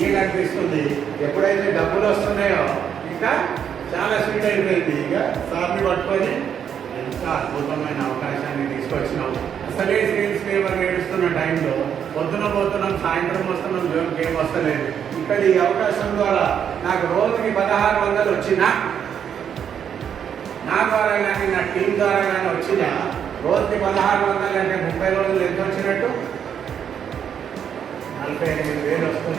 అనిపిస్తుంది. ఎప్పుడైతే డబ్బులు వస్తున్నాయో ఇంకా చాలా స్వీట్ అయిపోయింది. ఇక సార్ని పట్టుకొని ఎంత అద్భుతమైన అవకాశాన్ని తీసుకొచ్చినాం. అసలే సేల్స్ లేవర్ ఏడుస్తున్న టైంలో పొద్దున పోతున్నాం, సాయంత్రం వస్తున్నాం, జోన్కి ఏం వస్తలేదు. ఇక్కడ ఈ అవకాశం ద్వారా నాకు రోజుకి 1600 వచ్చినా, నా ద్వారా కానీ నా టీం ద్వారా కానీ వచ్చినా రోజుకి 1600 అంటే 30 రోజులు ఎంత వచ్చినట్టు? 45,000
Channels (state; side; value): quieter; left; 8.4 dB